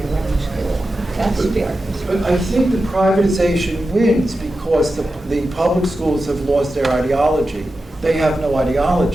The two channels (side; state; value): both; normal; correlation 0.92